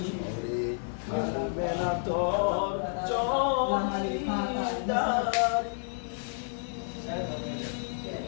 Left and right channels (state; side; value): silent; right; digital silence